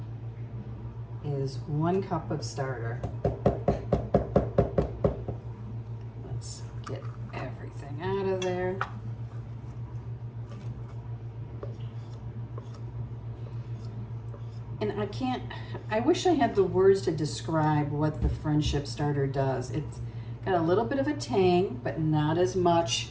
is 1 cup of starter. Let's get everything out of there. And I wish I had the words to describe what the Friendship Starter does. It's got a little bit of a tang, but not as much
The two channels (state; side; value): identical; both; correlation 1.00